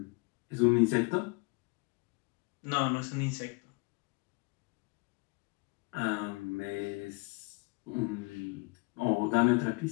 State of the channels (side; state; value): right; quieter; 28.2 dB